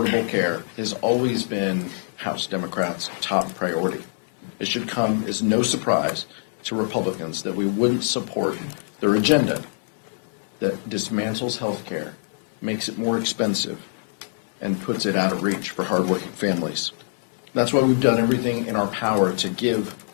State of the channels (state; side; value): silent; right; digital silence